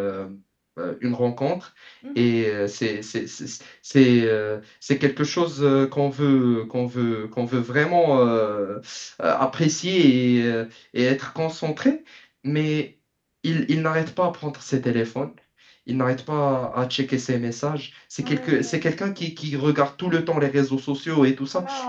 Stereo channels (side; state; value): both; identical; correlation 1.00